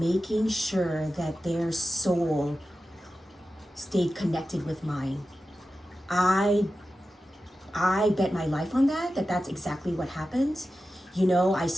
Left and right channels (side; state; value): both; normal; correlation 0.93